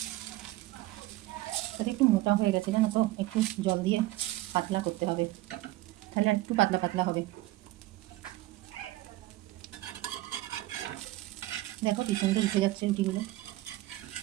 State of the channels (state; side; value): quieter; left; 17.7 dB